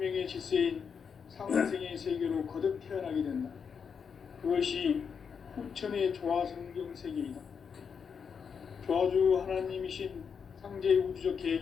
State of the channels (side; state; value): right; quieter; 6.4 dB